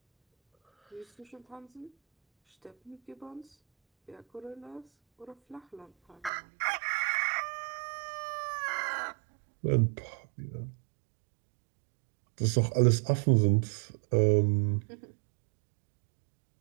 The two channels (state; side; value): drops out; left; at 6.3 s